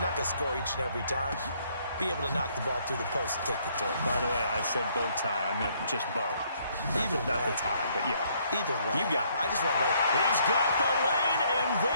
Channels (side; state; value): both; inverted; correlation -0.67